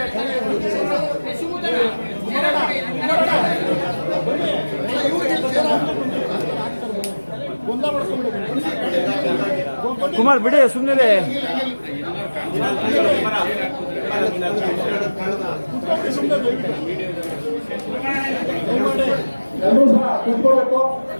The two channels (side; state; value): both; inverted; correlation -1.00